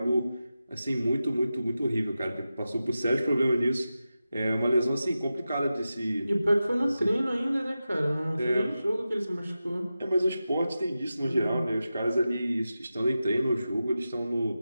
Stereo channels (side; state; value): both; inverted; correlation -0.92